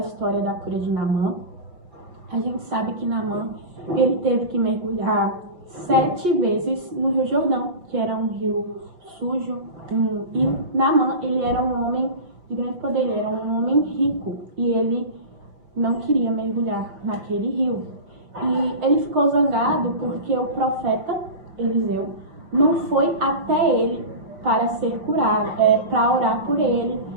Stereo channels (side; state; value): left; late; 5.6 ms